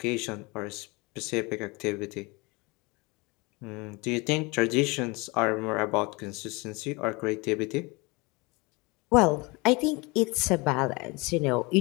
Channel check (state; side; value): quieter; right; 26.4 dB